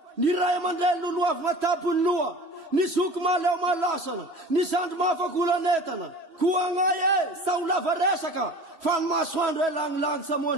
Ny ray aman-dreny loloavina tapony loha, ny zoko maleo malasana, ny zandro mahafakolanetana. Koa ngay sa ho lava resaka fa ny masoandro elangilany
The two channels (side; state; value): left; late; 3.1 ms